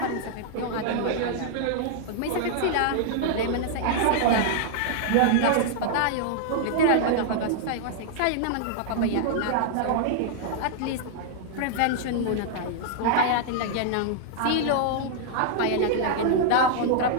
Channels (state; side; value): different; both; correlation -0.01